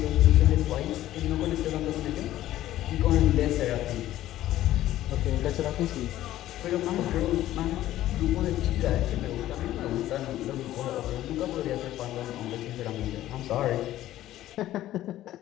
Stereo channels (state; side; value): quieter; right; 14.0 dB